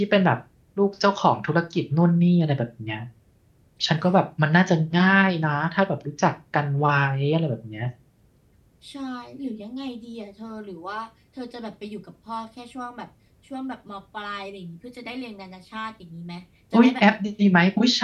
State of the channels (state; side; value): identical; both; correlation 1.00